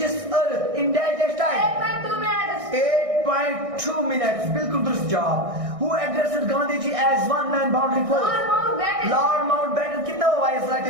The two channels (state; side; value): late; left; 1.6 ms